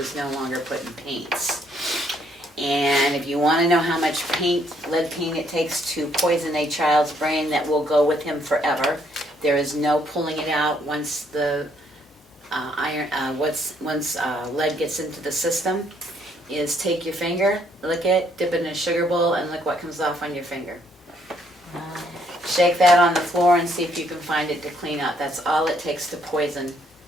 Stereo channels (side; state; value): both; normal; correlation 0.69